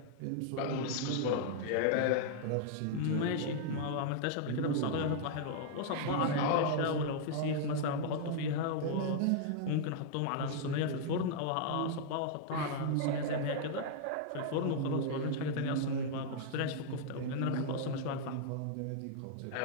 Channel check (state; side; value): different; both; correlation -0.01